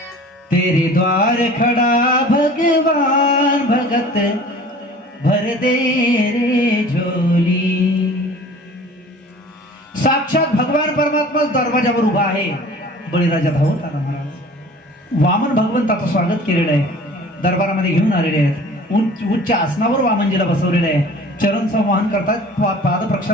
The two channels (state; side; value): normal; both; correlation 0.45